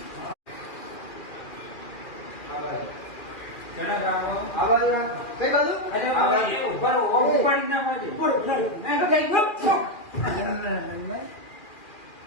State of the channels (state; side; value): late; right; 2.4 ms